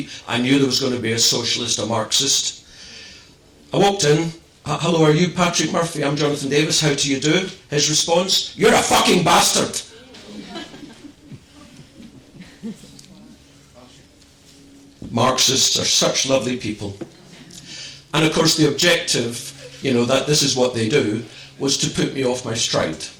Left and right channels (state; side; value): identical; both; correlation 1.00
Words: I knew there was going to be a socialist, a Marxist. I walked in, hello, are you Patrick Murphy? I'm Jonathan Davis, how do you do? His response, you're a fucking bastard. Marxists are such lovely people. And of course the objective, that this is what they do, was to put me off my stride.